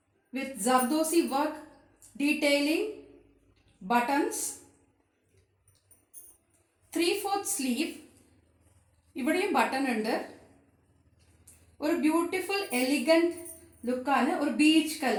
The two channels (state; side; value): identical; both; correlation 1.00